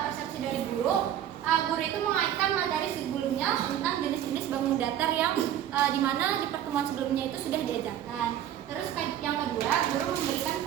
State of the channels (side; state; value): left; quieter; 11.0 dB